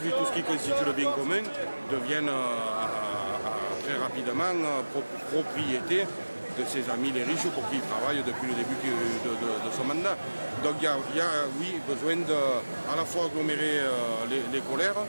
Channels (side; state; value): both; inverted; correlation -1.00